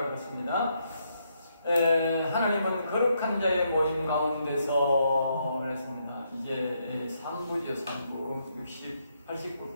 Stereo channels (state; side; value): inverted; both; correlation -0.77